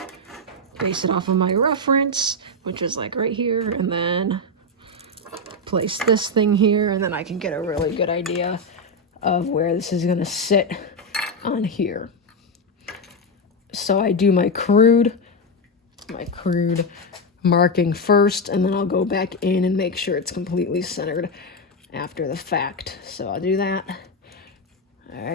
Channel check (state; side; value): normal; both; correlation 0.07